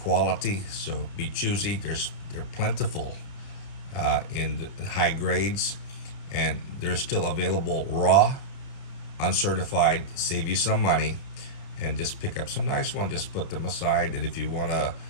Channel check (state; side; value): late; right; 31 ms